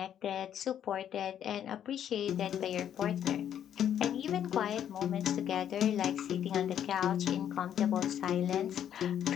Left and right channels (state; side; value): quieter; right; 9.8 dB